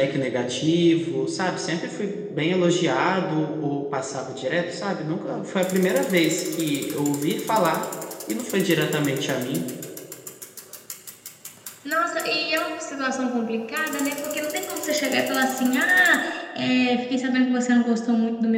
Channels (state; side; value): identical; both; correlation 1.00